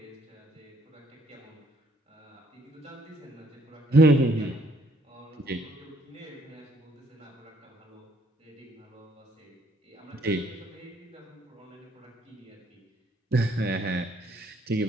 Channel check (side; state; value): both; normal; correlation 0.66